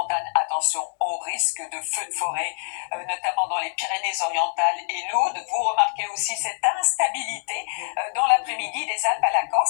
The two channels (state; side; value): silent; right; digital silence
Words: Attention au risque de feux de forêt, notamment dans les Pyrénées-Orientales et l'Aude. Vous remarquez aussi cette instabilité dans l'après-midi des Alpes à la